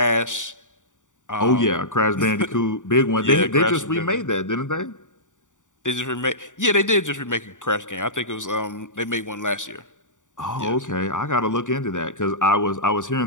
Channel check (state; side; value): late; right; 0.86 ms